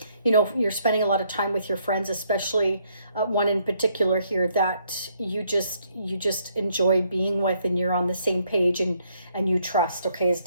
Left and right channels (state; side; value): inverted; both; correlation -0.71